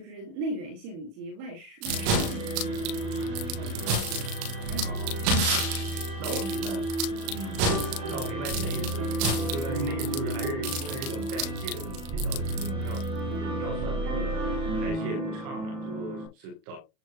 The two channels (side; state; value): left; late; 37 ms